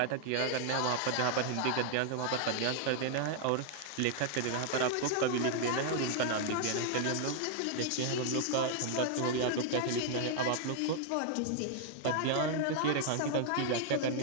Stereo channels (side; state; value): both; different; correlation 0.00